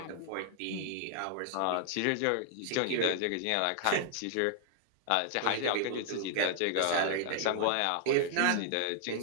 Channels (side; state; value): both; different; correlation 0.00